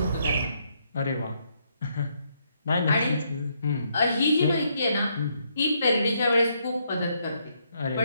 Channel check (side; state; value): both; inverted; correlation -0.74